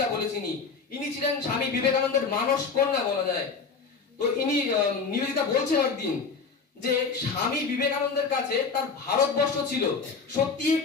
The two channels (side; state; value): right; quieter; 5.0 dB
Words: বলে চিনি। ইনি ছিলেন স্বামী বিবেকানন্দের মানস কন্যা বলা যায়। তো ইনি নিবেদিতা বলছেন একদিন যে স্বামী বিবেকানন্দের কাছে তার ভারতবর্ষ ছিল সত্যি